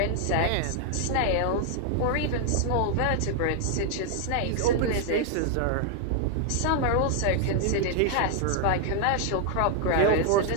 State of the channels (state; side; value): different; both; correlation 0.00